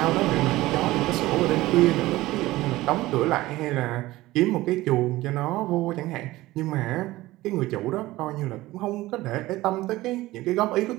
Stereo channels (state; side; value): quieter; left; 17.8 dB